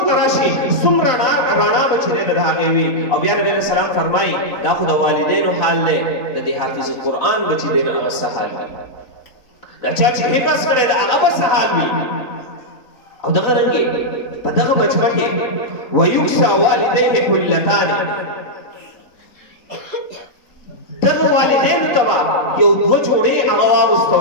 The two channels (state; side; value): late; right; 3.9 ms